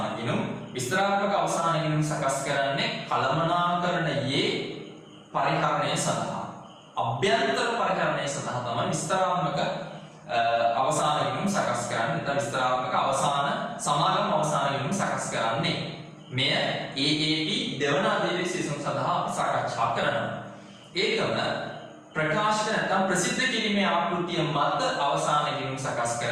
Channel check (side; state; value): both; identical; correlation 1.00